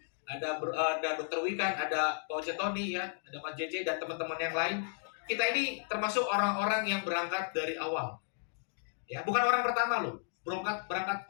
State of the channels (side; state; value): right; silent; digital silence